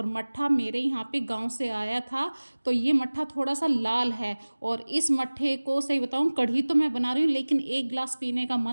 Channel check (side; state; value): both; inverted; correlation -1.00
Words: मट्ठा मेरे यहाँ पे गांव से आया था, तो ये मट्ठा थोड़ा सा लाल है। और इस मट्ठे को सही बताऊँ, कढ़ी तो मैं बना रही हूँ लेकिन एक गिलास पीने का